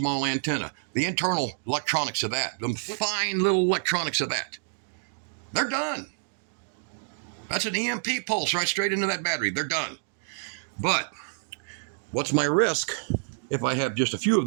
antenna. The internal electronics of that, the fine little electronics of that, they're done. That's an EMP pulse right straight into that battery. They're done. But what's my risk if I have just a few of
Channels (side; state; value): left; silent; digital silence